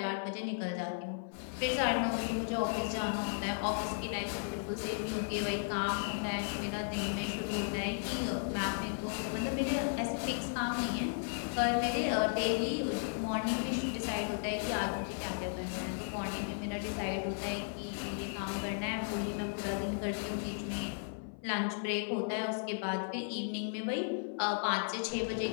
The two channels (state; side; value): silent; right; 54 dB below the other